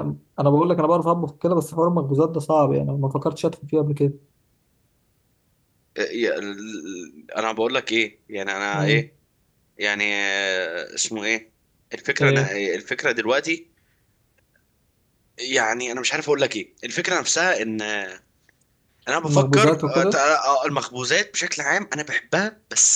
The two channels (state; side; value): identical; both; correlation 1.00